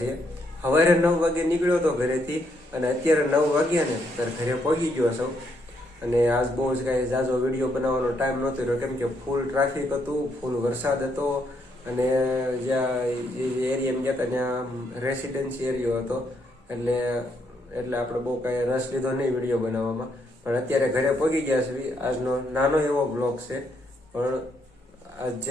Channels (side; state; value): both; normal; correlation 0.75